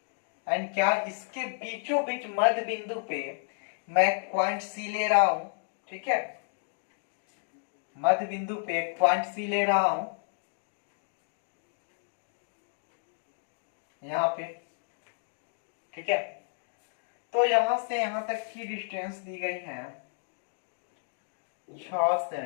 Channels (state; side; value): silent; right; digital silence